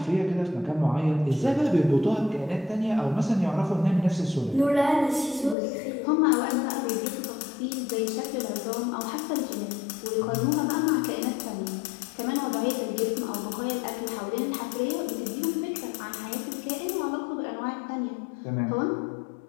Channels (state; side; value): drops out; right; at 5.6 s